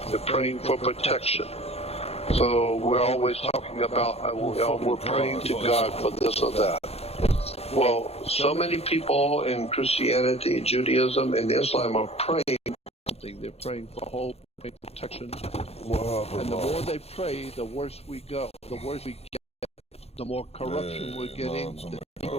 They're praying for protection. So we're always talking about, we're praying to God for this or that. Well, so many people in Christianity, Judaism, and Islam are praying for something. They're praying for hope, praying for protection. And the more they pray, the worse we go. The worse we get. The more corruption we're getting, the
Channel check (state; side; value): late; right; 0.30 ms